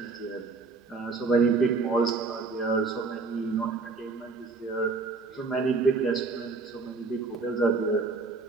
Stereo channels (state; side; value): quieter; left; 4.1 dB